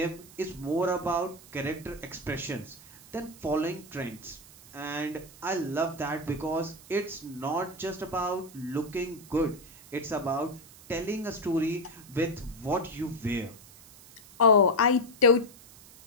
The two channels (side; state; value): right; noise; hiss, 21 dB below the sound